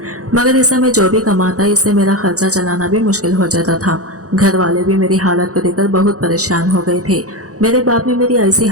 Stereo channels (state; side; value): late; left; 0.66 ms